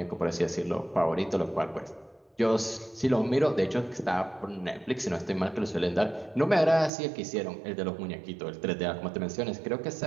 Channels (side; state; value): left; drops out; at 6.9 s